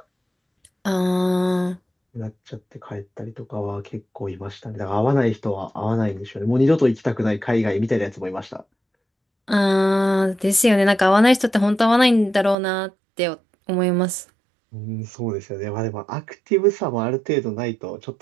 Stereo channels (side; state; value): left; drops out; at 12.6 s